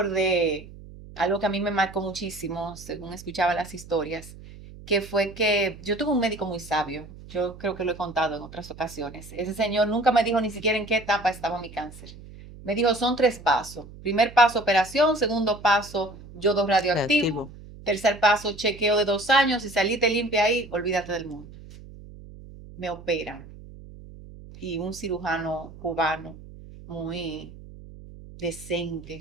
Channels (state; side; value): noise; right; hum, 17 dB below the sound